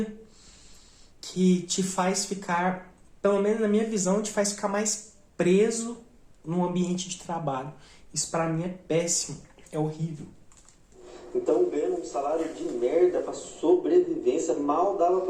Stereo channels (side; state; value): both; identical; correlation 1.00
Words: que te faz ficar, pelo menos na minha visão, te faz ficar mais preso no ambiente de trabalho. Isso pra mim é péssimo, é horrível. Então ganhando um salário de merda pra sobrevivência, mal dava